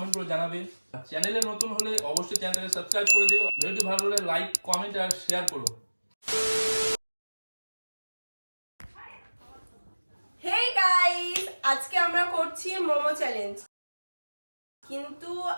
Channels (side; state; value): both; inverted; correlation -1.00